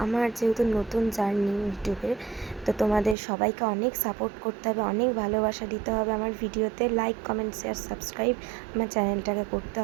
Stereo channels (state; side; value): drops out; left; at 3.2 s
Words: আমার যেহেতু নতুন জার্নি ইউটিউবের, তো তোমাদের সবাইকে অনেক সাপোর্ট করতে হবে, অনেক ভালোবাসা দিতে হবে আমার ভিডিওতে। লাইক, কমেন্ট, শেয়ার, সাবস্ক্রাইব আমার চ্যানেলটাকে করতে